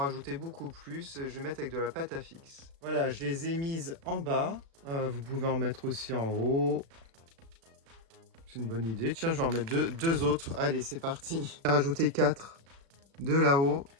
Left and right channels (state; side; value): late; left; 36 ms